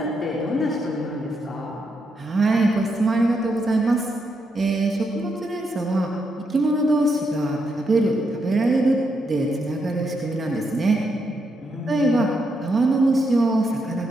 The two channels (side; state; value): both; normal; correlation 0.80